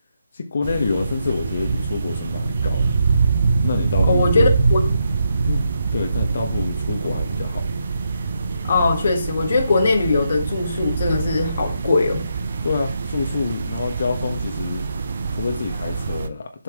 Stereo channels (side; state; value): both; inverted; correlation -0.80